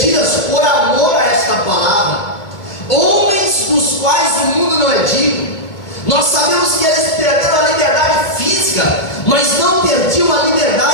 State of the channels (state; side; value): late; right; 2.2 ms